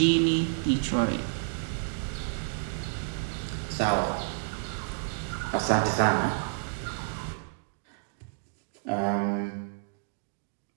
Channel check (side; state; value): left; silent; digital silence